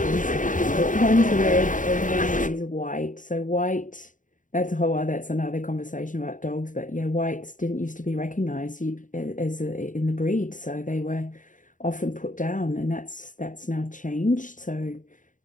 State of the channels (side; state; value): right; late; 0.38 ms